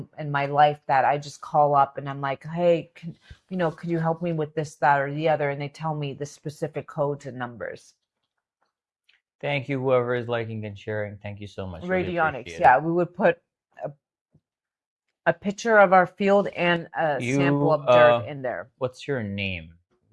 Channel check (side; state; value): both; identical; correlation 1.00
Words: in my life that I just call up and I'm like, hey, could you help me with this, that, or the other? And they tell me the specific codes and numbers. Thank you, whoever is liking and sharing. Thank you so much. Really Radionics, appreciate yeah, we would put a picture of our field and a it. sample of dirt in there. What's your name?